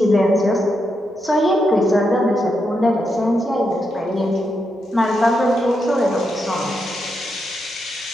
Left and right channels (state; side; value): normal; both; correlation 0.83